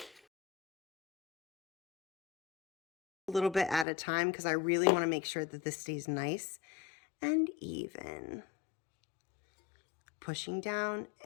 A little bit at a time because I really want to make sure that this stays nice and even. Pushing down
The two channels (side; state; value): right; drops out; at 3.9 s